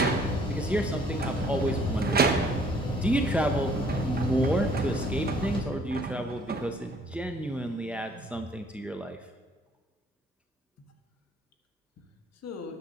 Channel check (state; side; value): normal; both; correlation 0.59